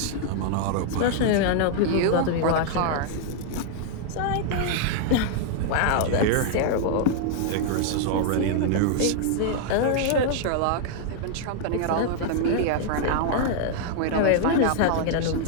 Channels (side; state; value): both; different; correlation -0.01